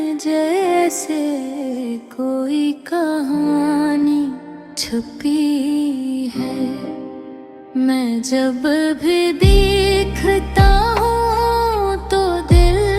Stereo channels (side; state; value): both; identical; correlation 1.00